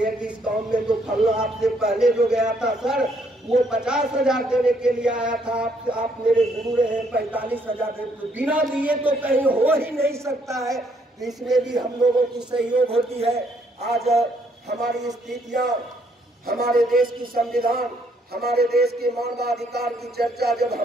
कि इस काम में तो फलना आपसे पहले जो गया था सर वो 50,000 देने के लिए आया था, आप मेरे गुरु रहे 45,000 दे, बिना दिए तो कहीं हो ही नहीं सकता है। तो इसमें भी हम लोगों की सहयोग होती है। आज हमारी स्थितियां, हमारे देश की संविधान, हमारे देश के मानवाधिकार की चर्चा जब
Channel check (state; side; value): normal; both; correlation 0.69